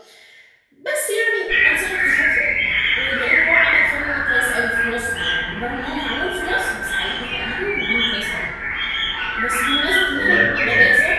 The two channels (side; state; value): both; identical; correlation 1.00